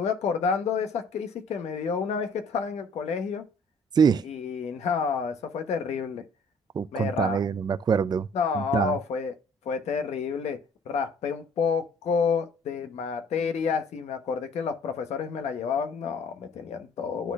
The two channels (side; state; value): both; normal; correlation 0.55